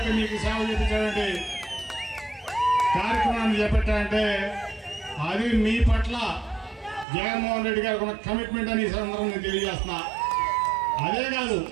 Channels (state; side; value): drops out; left; at 7.1 s